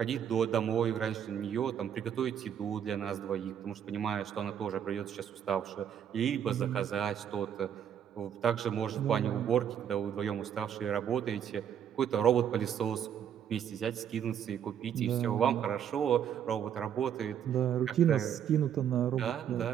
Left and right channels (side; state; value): left; quieter; 9.1 dB